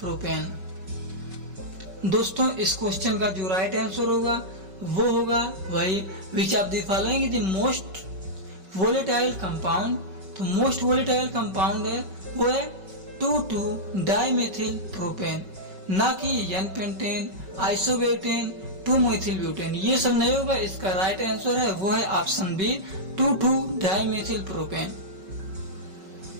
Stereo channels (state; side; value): late; left; 5.3 ms